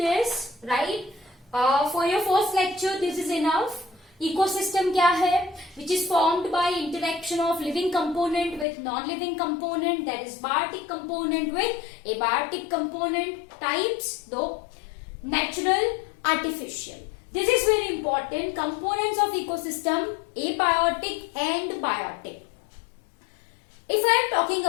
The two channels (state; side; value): drops out; right; at 8.7 s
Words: right? For your first lecture, this is enough. Ecosystem क्या है? Which is formed by interaction of living component with non-living component, that is biotic component with abiotic component. Types though, natural, artificial. This is very important. Components of ecosystem, abiotic and biotic. If I am talking